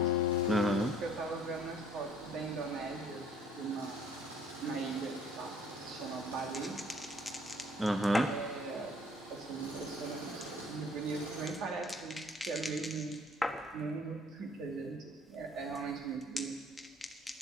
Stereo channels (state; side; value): normal; both; correlation 0.57